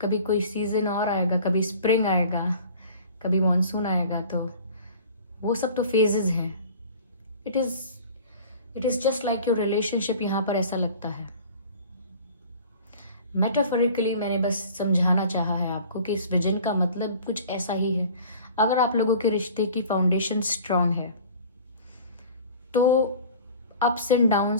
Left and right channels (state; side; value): inverted; both; correlation -0.44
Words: कभी कोई सीजन और आएगा, कभी स्प्रिंग आएगा, कभी मॉनसून आएगा, तो वो सब तो फेजेस हैं। It is just like your relationship. यहाँ पर ऐसा लगता है, मेटाफोरिकली मैंने बस समझाना चाहा है आपको कि इस विजन का मतलब कुछ ऐसा ही है। अगर आप लोगों के रिश्ते की फाउंडेशन स्ट्रांग है तो अप्स एंड